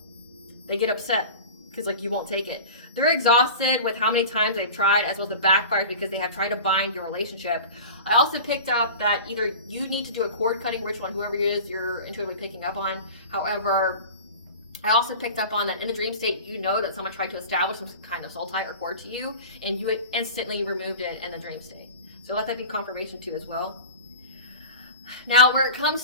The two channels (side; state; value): both; inverted; correlation -0.36